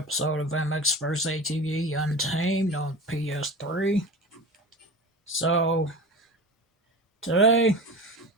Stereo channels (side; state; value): both; normal; correlation 0.31